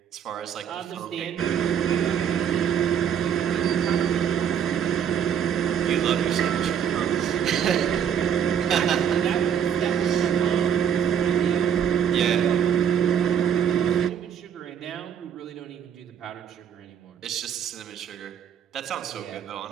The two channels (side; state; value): left; quieter; 8.6 dB